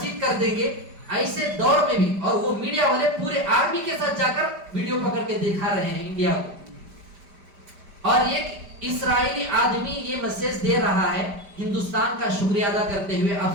کر دیں گے. ایسے دور میں بھی, اور وہ میڈیا والے پورے آرمی کے ساتھ جا کر ویڈیو پکڑ کے دکھا رہے ہیں انڈیا کو. اور ایک اسرائیلی آدمی یہ میسج دے رہا ہے ہندوستان کا شکریہ ادا کرتے ہوئے,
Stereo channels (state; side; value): late; left; 5.1 ms